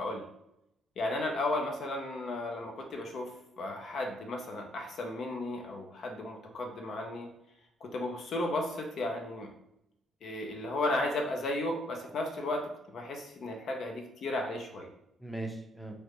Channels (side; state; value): both; normal; correlation 0.69